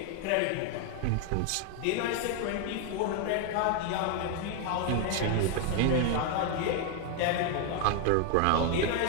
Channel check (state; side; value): different; both; correlation 0.01